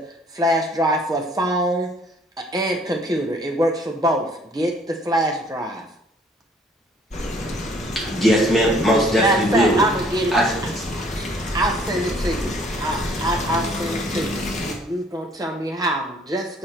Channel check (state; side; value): normal; both; correlation 0.59